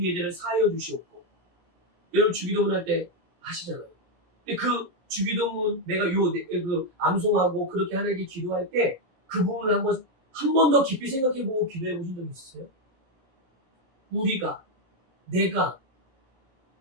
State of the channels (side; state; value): left; late; 17 ms